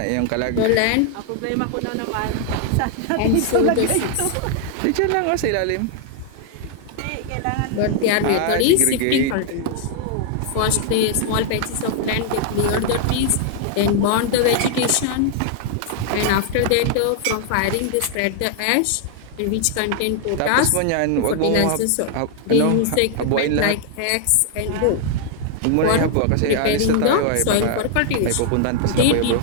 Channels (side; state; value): both; different; correlation 0.00